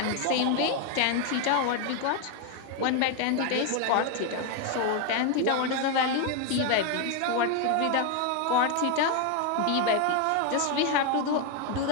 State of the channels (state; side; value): different; both; correlation 0.01